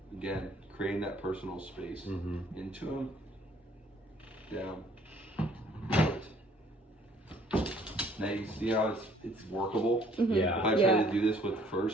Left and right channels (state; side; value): normal; both; correlation 0.60